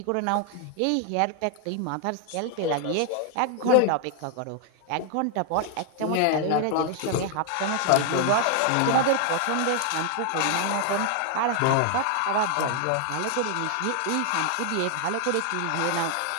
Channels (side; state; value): both; different; correlation 0.00